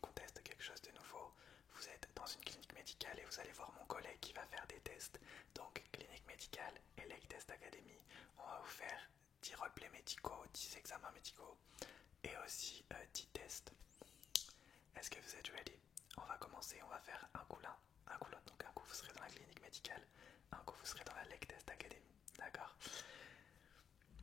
on teste quelque chose de nouveau. Vous êtes dans une clinique médicale et vous allez voir mon collègue qui va faire des tests. Donc, clinique médicale et Lake Test Academy, on va vous faire 10 roleplays médicaux, 10 examens médicaux et aussi 10 tests. Est-ce que vous êtes ready? On va commencer, on va faire un coup l'un, un coup l'autre. Donc un coup vous serez dans la clinique médicale, un coup vous serez dans la Lake Test Academy. D'accord?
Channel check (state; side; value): quieter; right; 7.6 dB